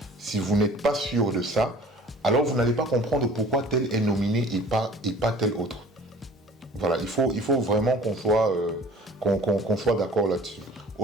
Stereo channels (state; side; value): normal; both; correlation 0.48